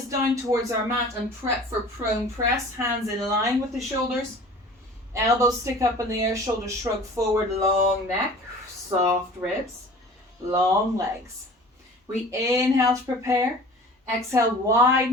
down towards our mat and prep for prone press. Hands in line with the shoulders. Elbows stick up in the air, shoulders shrug forward, long neck, soft ribs, long legs. We inhale to prepare. Exhale,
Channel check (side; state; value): both; normal; correlation 0.44